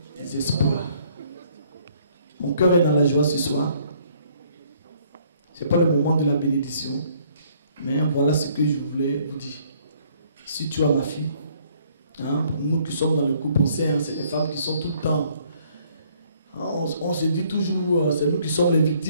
espoirs. Mon cœur est dans la joie ce soir. Ce n'est pas le moment de la bénédiction. Mais voilà ce que je voulais vous dire. Si tu as ma fille, hein, nous qui sommes dans le couple, on sait, hein, c'est des femmes qui sont tout le temps. Hein, on se dit toujours, c'est nous qui sommes les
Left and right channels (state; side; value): inverted; both; correlation -0.63